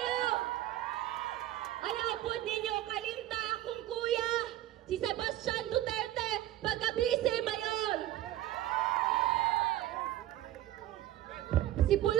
Ayaw po ninyo kalimta akong kuya, si Sebastian Duterte, pagka-vice mayor. Si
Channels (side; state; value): left; quieter; 14.1 dB